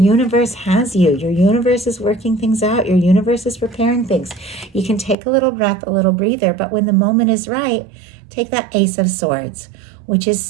has you. Your universe is working things out. Your universe is preparing things. You can take a little breath, a little breather, but when the moment is right, take that Ace of Swords, which is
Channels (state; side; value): drops out; left; at 5.2 s